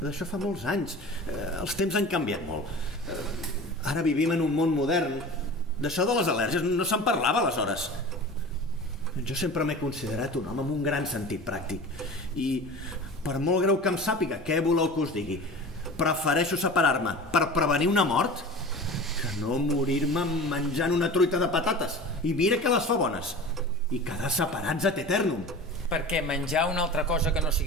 fa molts anys. Els temps han canviat molt. Ara vivim en un món modern. D'això de les al·lèrgies no se'n parlava aleshores. Jo sempre m'he considerat un home amb un gran sentit pràctic. I per molt greu que em sàpiga, què voleu que us digui? Prefereixo separar-me per prevenir una mort que no morir-me menjant una truita de patates. I mira que les fa bones. I quedar separats ad eternum. Perquè menjar una altra cosa que no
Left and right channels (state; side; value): normal; both; correlation 0.36